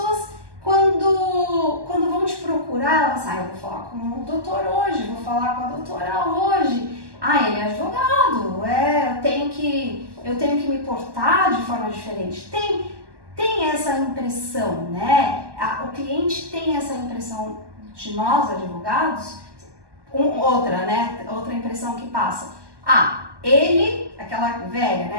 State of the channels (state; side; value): late; left; 1.2 ms